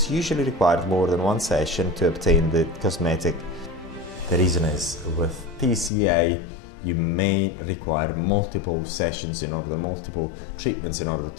usually required more than one session to obtain the cosmetic. The reason is with TCA you may require multiple sessions multiple treatments in order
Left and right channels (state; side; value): drops out; right; at 5.9 s